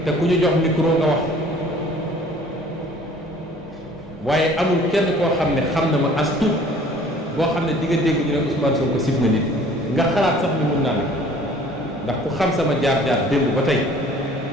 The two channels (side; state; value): both; normal; correlation 0.52